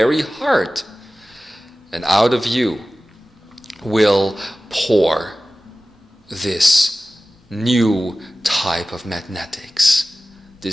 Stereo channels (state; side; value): normal; both; correlation 0.96